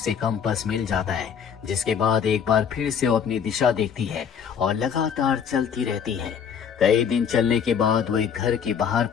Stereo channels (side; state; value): right; quieter; 7.4 dB